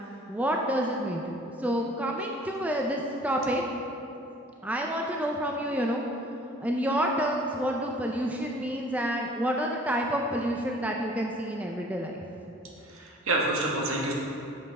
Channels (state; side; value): normal; both; correlation 0.51